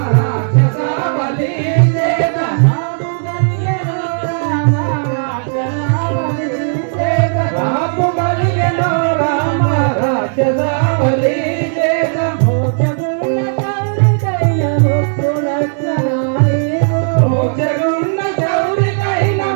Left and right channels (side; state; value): left; silent; digital silence